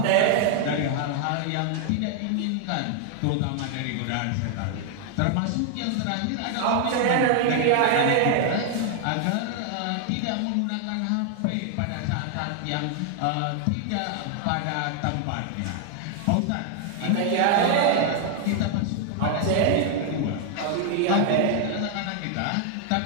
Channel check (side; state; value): both; different; correlation 0.00